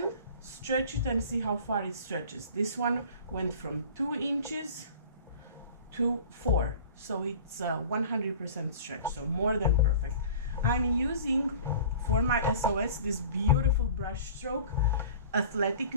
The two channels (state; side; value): inverted; both; correlation -0.42